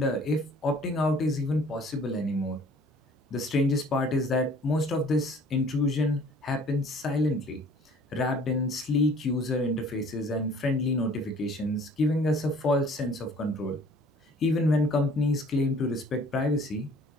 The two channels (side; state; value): both; normal; correlation 0.53